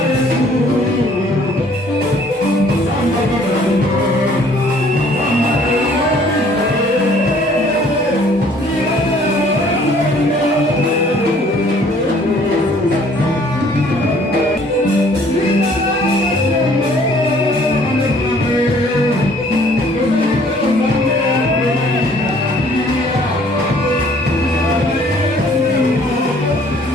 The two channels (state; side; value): normal; both; correlation 0.58